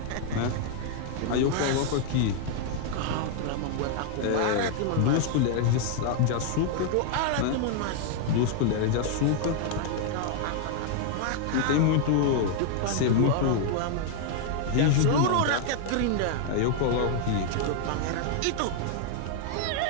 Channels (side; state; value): both; different; correlation 0.00